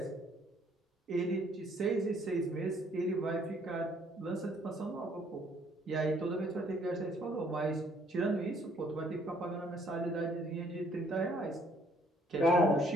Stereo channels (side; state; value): both; normal; correlation 0.63